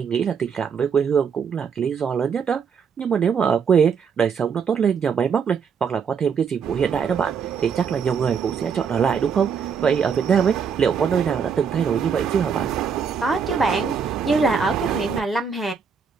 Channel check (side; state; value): left; quieter; 6.5 dB